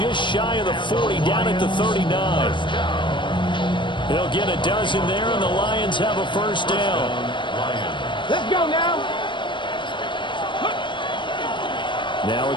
shy of the 40, down at the 39. He'll get a dozen there, and the Lions have a first down. Let's go now. Now a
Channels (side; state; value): right; late; 0.23 ms